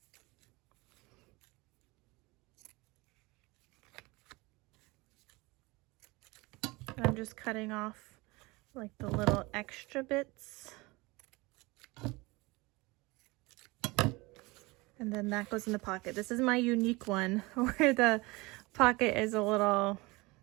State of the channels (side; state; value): left; quieter; 23.7 dB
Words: And I'm just cutting off like the little extra bits. And then that goes in the pocket. This is my unique one where the pocket is a little,